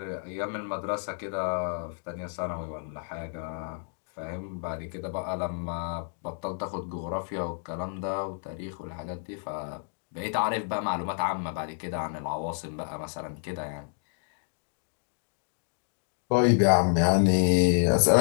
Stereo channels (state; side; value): silent; right; 58 dB below the other